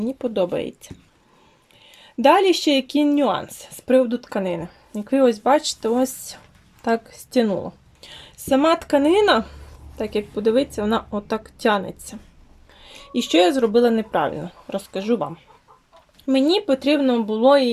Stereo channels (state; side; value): identical; both; correlation 1.00